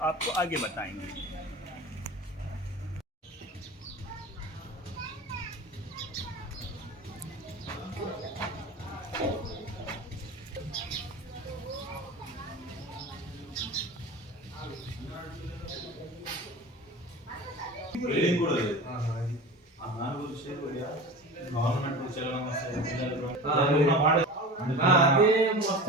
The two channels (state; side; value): normal; both; correlation 0.33